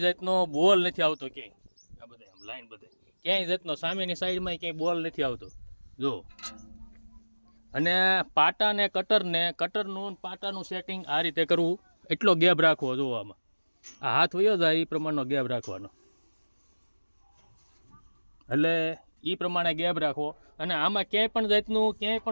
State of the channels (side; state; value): both; inverted; correlation -1.00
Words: જાતનો બોલ નથી આવતો ક્યાંય. આ બધે આમ લાઈન બધે ક્યાંય જાતનો સામેની સાઈડમાં ક્યાંય બોલ નથી આવતો. જો અને પાટા ને કટરનું પાટાનું સેટિંગ આ રીતે કરવું. એટલો ગેપ રાખવો. જોવામાં આ હાથ વયો જાય એ પ્રમાણનો ગેપ રાખવાનો, એટલે એ પ્રમાણે ગેપ રાખવો. અને આમાં ક્યાંય પણ જાતનું ક્યાંય